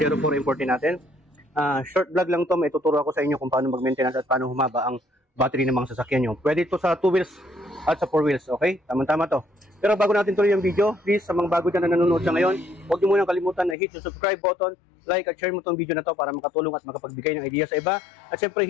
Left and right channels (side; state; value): right; drops out; at 13.8 s